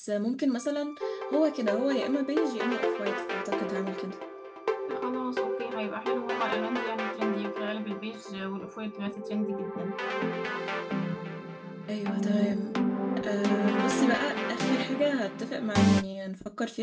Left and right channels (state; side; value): identical; both; correlation 1.00